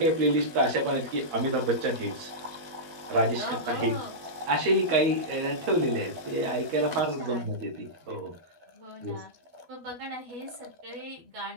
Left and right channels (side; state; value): left; late; 12 ms